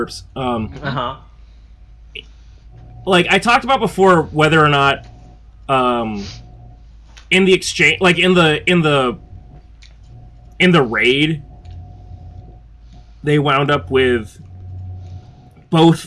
Like I talked about before, whether or not in the exchange, like in the raid, they wound up with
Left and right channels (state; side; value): identical; both; correlation 1.00